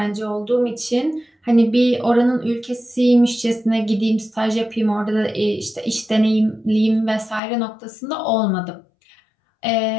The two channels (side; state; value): right; drops out; at 7.4 s